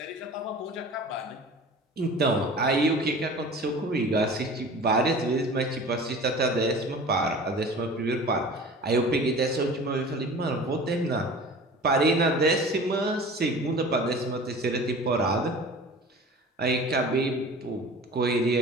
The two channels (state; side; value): normal; both; correlation 0.40